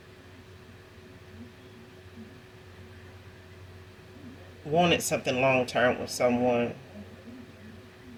wanted something long-term with someone.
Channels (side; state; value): both; identical; correlation 1.00